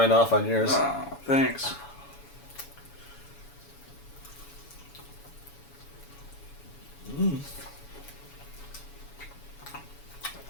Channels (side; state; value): right; late; 7.1 ms